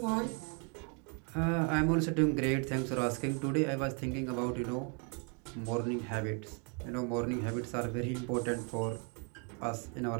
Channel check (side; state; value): left; quieter; 37.4 dB